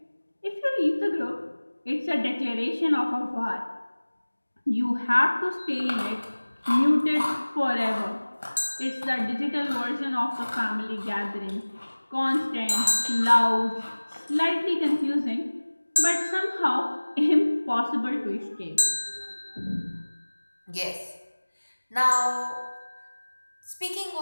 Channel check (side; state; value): both; inverted; correlation -1.00